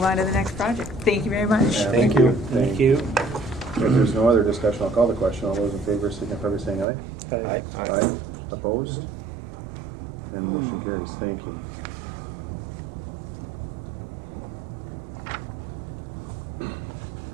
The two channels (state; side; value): drops out; left; at 6.9 s